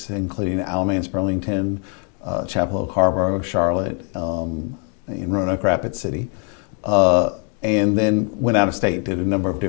including Alamance, Burlington, Chapel Hill, Carrboro, Charlotte, in Roanoke Rapids City. And then went out of state, did a number of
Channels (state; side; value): quieter; right; 39.7 dB